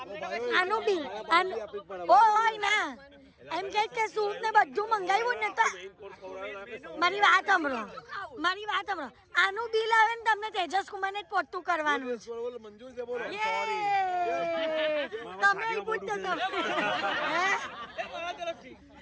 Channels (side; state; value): both; identical; correlation 1.00